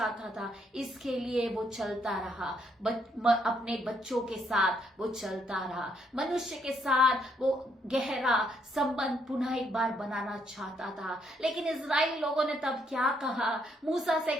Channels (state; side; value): normal; both; correlation 0.72